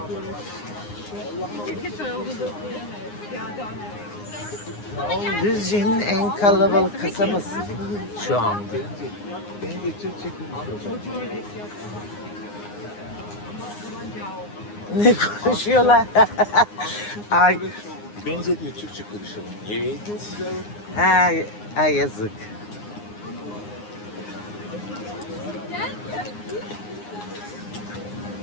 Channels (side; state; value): right; late; 9.7 ms